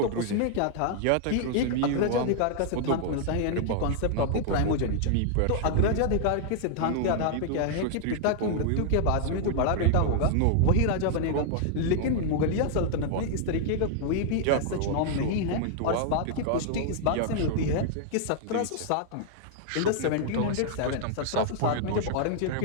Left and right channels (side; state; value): both; different; correlation -0.01